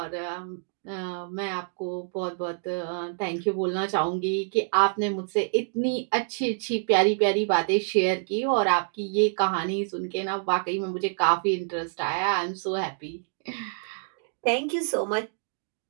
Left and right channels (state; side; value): silent; left; digital silence